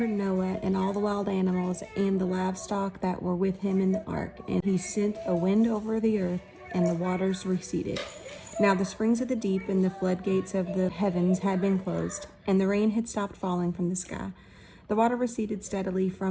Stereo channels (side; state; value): both; identical; correlation 1.00